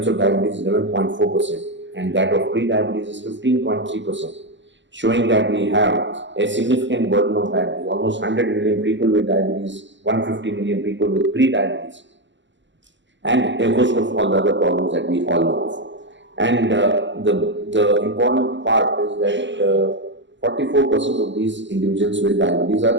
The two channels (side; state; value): left; late; 0.53 ms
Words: of diabetes is 11.4%, and that of pre-diabetes is 15.3%. Showing that we have a significant burden of diabetes, almost 100 million people with diabetes, 150 million people with pre-diabetes, and a host of all the other problems that we all know of. And the important part is that 44% of these individuals with diabetes